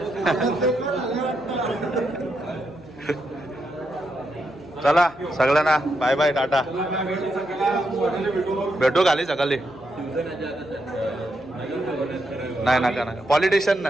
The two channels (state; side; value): noise; left; hum, 23 dB below the sound